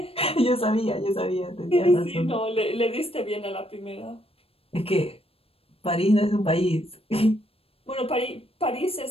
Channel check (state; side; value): late; right; 0.28 ms